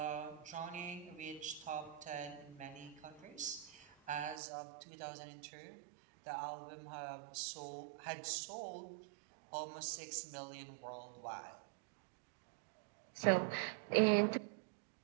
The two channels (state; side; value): drops out; left; at 4.4 s